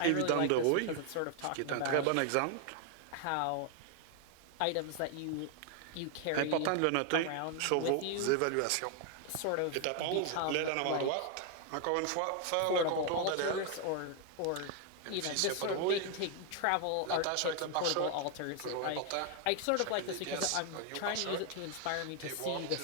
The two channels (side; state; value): both; different; correlation 0.00